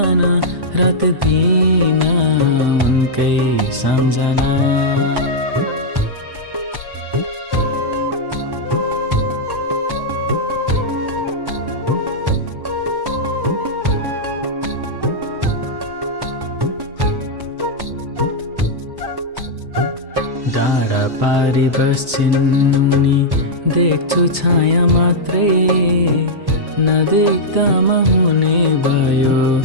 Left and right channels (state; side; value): late; left; 1.1 ms